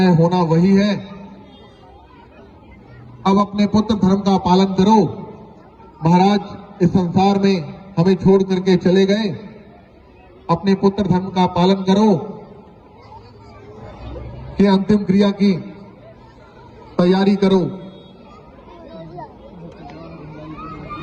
होना वही है। अब अपने पुत्र धर्म का पालन करो। महाराज, इस संसार में हमें छोड़ करके चले गए, अपने पुत्र धर्म का पालन करो कि अंतिम क्रिया की तैयारी करो।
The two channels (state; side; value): identical; both; correlation 1.00